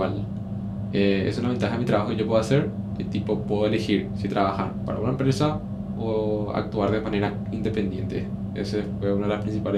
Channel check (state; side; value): identical; both; correlation 1.00